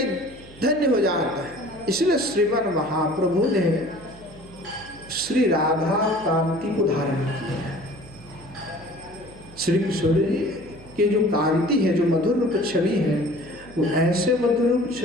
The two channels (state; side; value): noise; right; hum, 22 dB below the sound